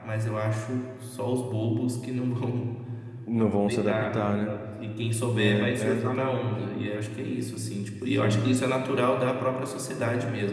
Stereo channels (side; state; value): both; identical; correlation 1.00